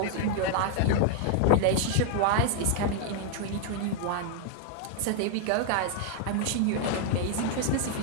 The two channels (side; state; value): both; different; correlation 0.00